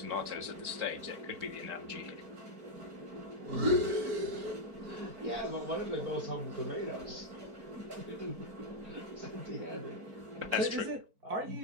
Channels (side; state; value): left; late; 4.5 ms